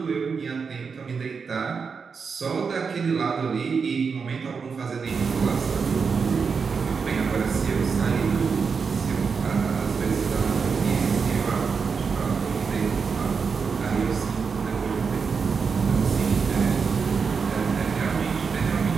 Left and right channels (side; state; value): left; quieter; 5.5 dB